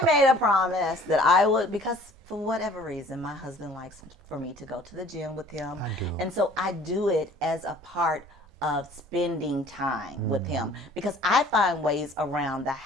made a promise that I would, because for whatever reason, my husband likes for me to go to the gym with him. And so I do it as a part of spending time with him, because I find ways around the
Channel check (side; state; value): both; normal; correlation 0.52